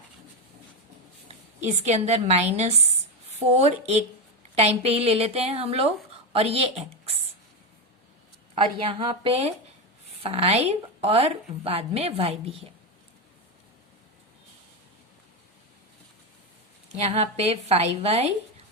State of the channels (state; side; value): normal; both; correlation 0.11